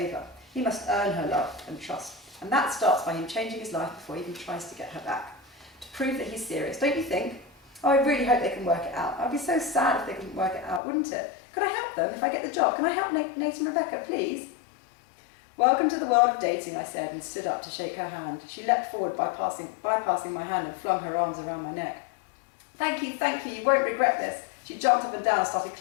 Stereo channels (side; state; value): right; drops out; at 10.8 s